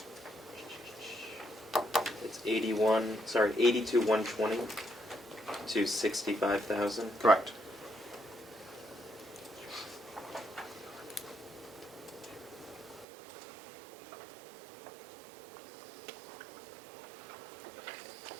82,120 to 65,000. Correct.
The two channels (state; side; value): drops out; left; at 13.1 s